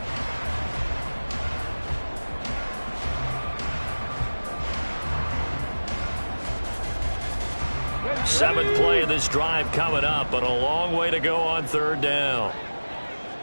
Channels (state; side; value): inverted; both; correlation -1.00